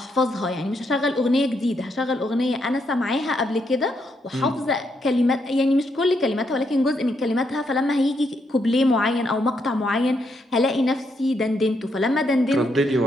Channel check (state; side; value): normal; both; correlation 0.78